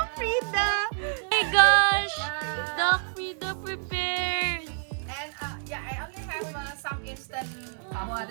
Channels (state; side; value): silent; left; digital silence